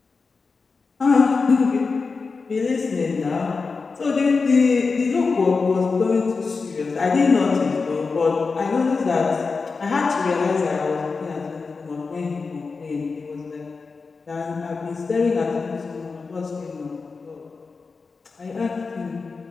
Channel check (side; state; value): right; quieter; 4.5 dB